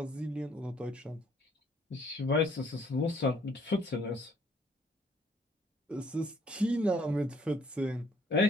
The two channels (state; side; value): normal; both; correlation 0.63